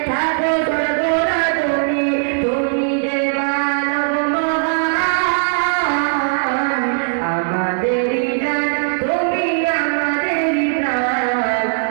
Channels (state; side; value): silent; left; digital silence